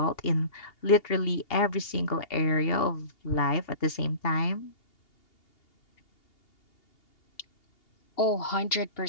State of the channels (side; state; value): right; late; 2.8 ms